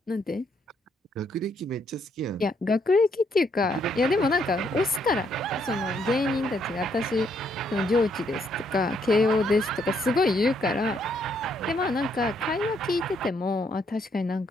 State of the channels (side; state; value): both; normal; correlation 0.72